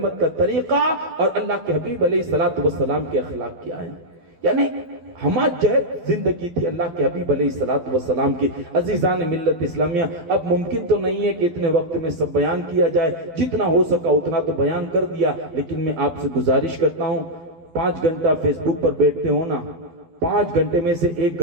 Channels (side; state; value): left; late; 12 ms